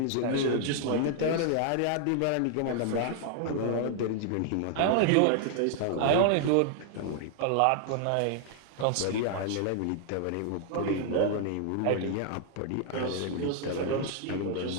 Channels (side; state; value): both; different; correlation 0.00